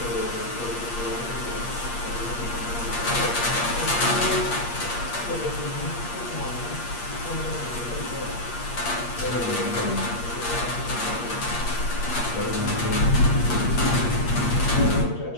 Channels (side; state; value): right; late; 8.5 ms